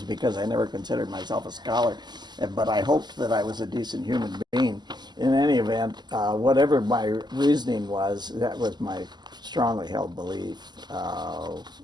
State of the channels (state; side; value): late; left; 0.21 ms